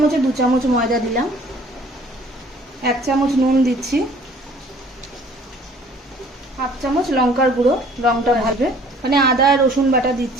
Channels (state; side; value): normal; both; correlation 0.54